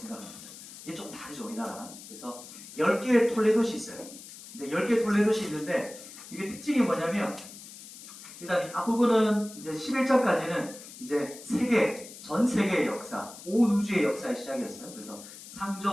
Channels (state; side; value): noise; left; hiss, 15 dB below the sound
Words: 이게 좀 다르죠, 우리나라랑. 그래서 10개의 톨레도시 있어요. 근데 10개의 톨레도시 있는데 이게 특징이 뭐냐면 일단 앞부분은 이제 11장까지는 이제 전 세계의 역사, 온 우주의 역사의 시작이었어요. 그래서